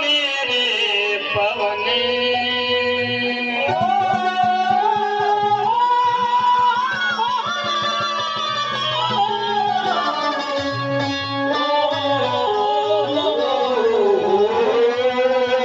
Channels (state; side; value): identical; both; correlation 1.00